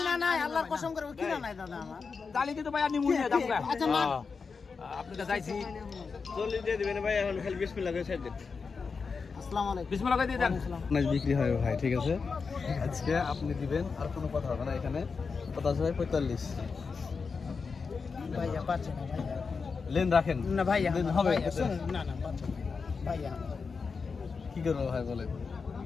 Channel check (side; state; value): right; quieter; 5.0 dB